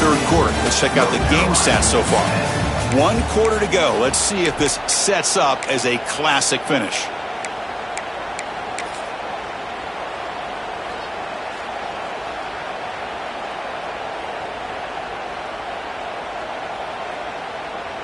3rd quarter. Let's check out the game stats so far. 1 quarter to go. Let's see if this sets up as a classic finish.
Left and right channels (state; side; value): identical; both; correlation 1.00